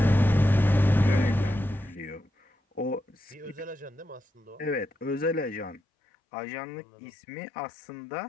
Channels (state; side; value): drops out; right; at 5.8 s